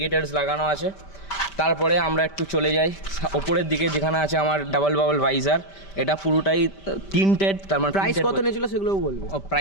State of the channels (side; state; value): right; late; 5.1 ms